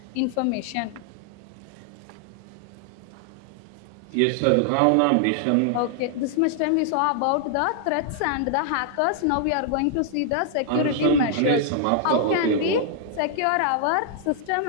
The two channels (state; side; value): different; both; correlation 0.00